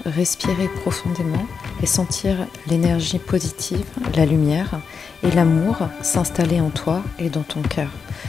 respirer profondément et sentir l'énergie positive, la lumière et l'amour s'installer en toi et dans ton cœur.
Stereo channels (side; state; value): right; quieter; 5.8 dB